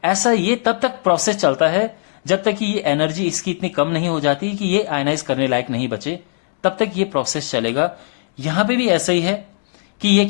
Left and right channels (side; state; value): right; silent; digital silence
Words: ऐसा ये तब तक प्रोसेस चलता है जब तक कि ये एनर्जी इसकी इतनी कम नहीं हो जाती कि ये आयनाइज करने लायक नहीं बचे, तब तक ये प्रोसेस चलेगा। यहां पे भी ऐसा ही है कि ये